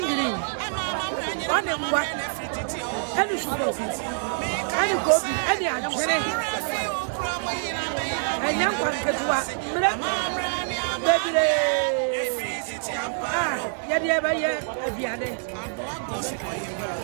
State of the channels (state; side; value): silent; left; digital silence